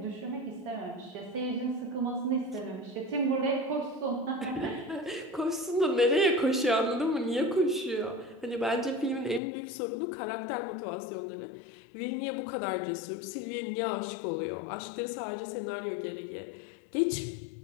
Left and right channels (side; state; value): right; drops out; at 9.4 s